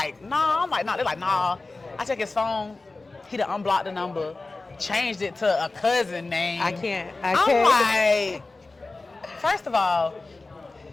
nah. They're like, nah. I check his phone. He done unblocked the number, changed it to a cousin name. I can't. I'm like, first of all,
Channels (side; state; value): right; quieter; 3.4 dB